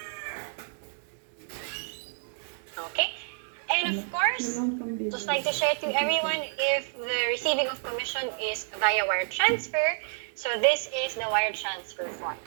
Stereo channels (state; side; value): silent; left; digital silence